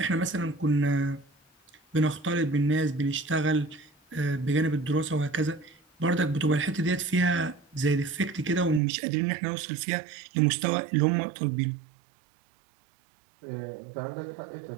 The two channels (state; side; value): drops out; left; at 8.8 s